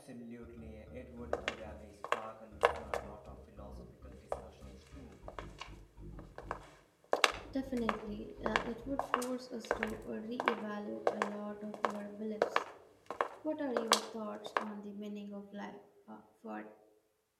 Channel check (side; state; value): both; identical; correlation 1.00